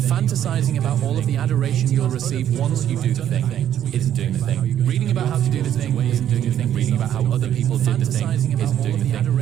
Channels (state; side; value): quieter; left; 10.6 dB